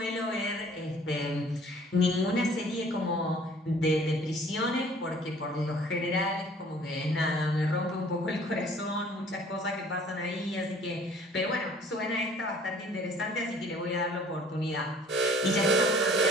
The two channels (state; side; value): normal; both; correlation 0.53